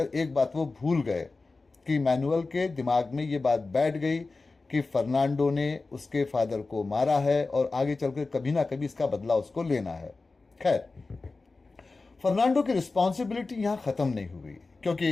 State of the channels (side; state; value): right; quieter; 3.7 dB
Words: एक बात वो भूल गए कि मैनुअल के दिमाग में ये बात बैठ गई कि फर्नांडो ने उसके फादर को मारा है और आगे चलकर कभी ना कभी इसका बदला उसको लेना है। खैर, फर्नांडो की रिस्पॉन्सिबिलिटी यहाँ ख़त्म नहीं हुई, क्योंकि